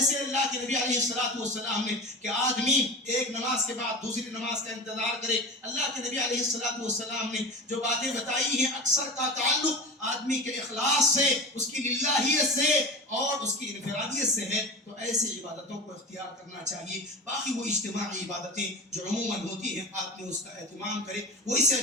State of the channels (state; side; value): normal; both; correlation 0.31